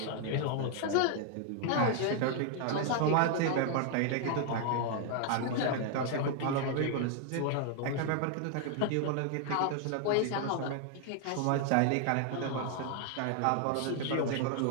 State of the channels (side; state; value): both; different; correlation 0.00